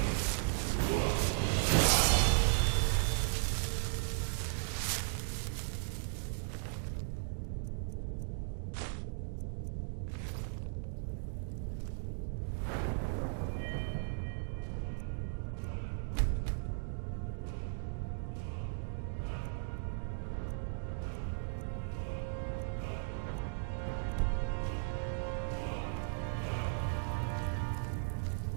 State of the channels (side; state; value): left; silent; digital silence